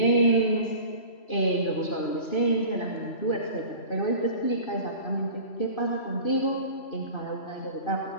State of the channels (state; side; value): late; right; 3.0 ms